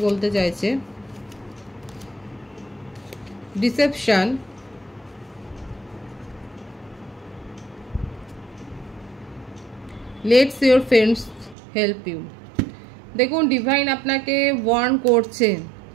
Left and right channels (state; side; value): drops out; left; at 11.6 s